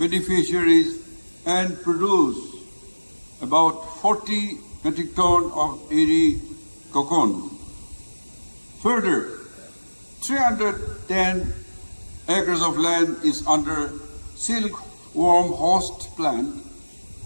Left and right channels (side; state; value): both; inverted; correlation -1.00